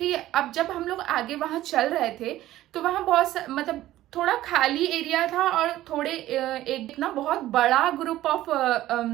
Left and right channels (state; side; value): quieter; left; 14.7 dB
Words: है. अब जब हम लोग आगे वहाँ चल रहे थे तो वहाँ बहुत मतलब थोड़ा खाली एरिया था और थोड़े एक ना बहुत बड़ा ग्रुप ऑफ